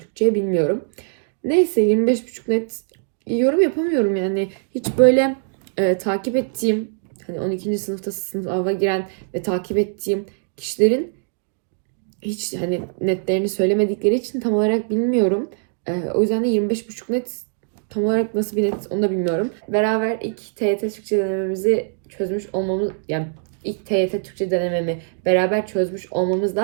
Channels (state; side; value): silent; left; digital silence